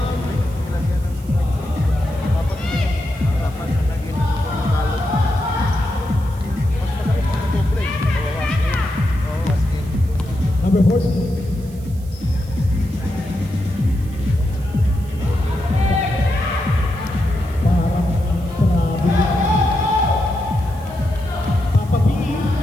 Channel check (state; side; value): noise; right; hiss, 24 dB below the sound